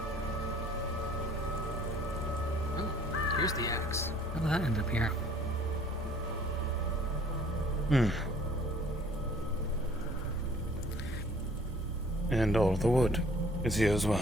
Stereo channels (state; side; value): noise; left; hum, 23 dB below the sound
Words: Oh, here's the axe. How did that end up here? And all the wood is here as well.